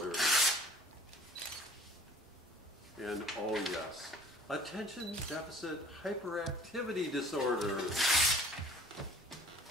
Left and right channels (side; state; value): both; normal; correlation 0.51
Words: And oh yes, attention deficit hyperactivity disorder.